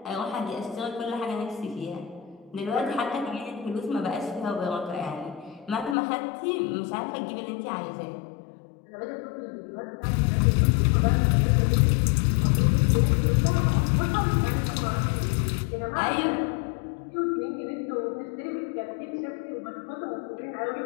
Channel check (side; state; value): right; drops out; at 6.0 s